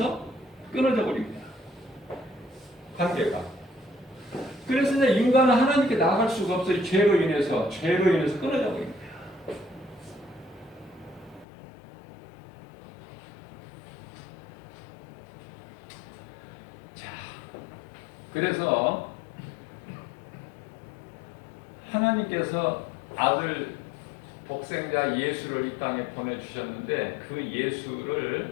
끊어져 버립니다. 관계가. 그래서 이제 인간은 하나님께 나아갈 수가 없어요. 죄로 인해서 끊어져 버립니다. 자, 그래서 하나님께서 아들 독생자 예수를 이 땅에 보내주셨는데 그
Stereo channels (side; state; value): right; drops out; at 11.5 s